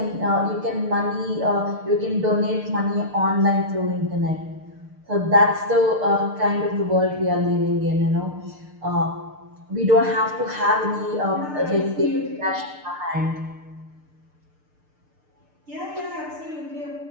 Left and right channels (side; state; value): left; late; 6.7 ms